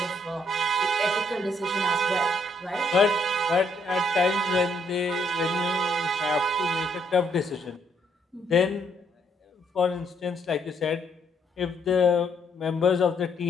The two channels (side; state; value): both; normal; correlation 0.70